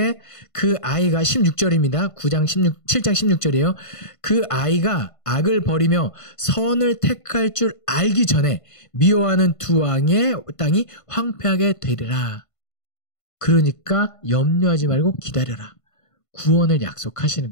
그 아이가 16절입니다. 7장 16절이에요. 그 아이가 악을 버리며 선을 택할 줄 알기 전에 미워하는 두 왕의 땅이 황폐하게 되리라. 그러니까 염려하지 말고 기다려라. 구원을 약속하시는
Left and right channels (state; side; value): late; right; 1.5 ms